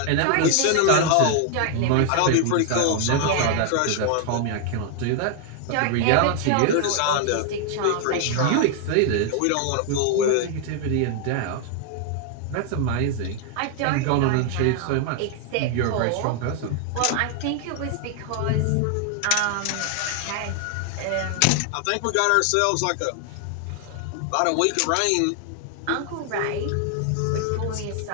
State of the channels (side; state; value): both; different; correlation 0.00